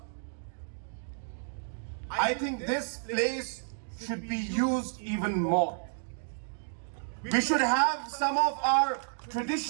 I think this place should be used even more. We should have some of our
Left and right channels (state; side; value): silent; left; digital silence